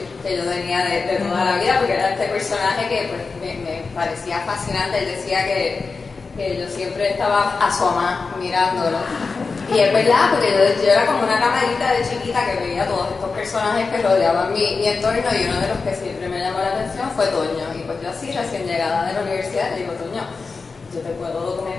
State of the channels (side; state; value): right; quieter; 4.5 dB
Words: que yo tenía de toda la vida, porque era este personaje que pues, me parecía fascinante. Él decía que yo siempre estaba asomada mirándolo, y es verdad, porque yo era como una camarita de chiquita que veía todos estos personajes que rodeaban mi entorno, y uno de los que siempre me llamó la atención fue Toño. Y pues yo así, recién llegada de la universidad, le digo: Toño, ¿yo te puedo